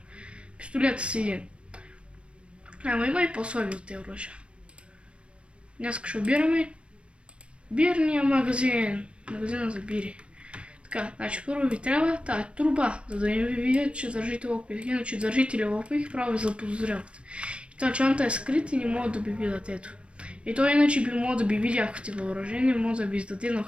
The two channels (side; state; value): left; late; 0.059 ms